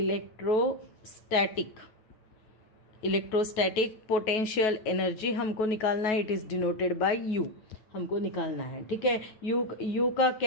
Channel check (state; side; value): late; right; 9.3 ms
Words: इलेक्ट्रोस्टैटिक पोटेंशियल एनर्जी हमको निकालना है। It is denoted bye U, हमको निकालना है, ठीक है। U का